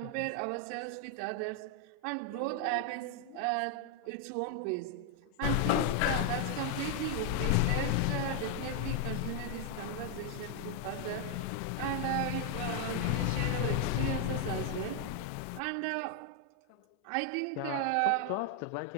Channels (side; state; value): both; different; correlation 0.00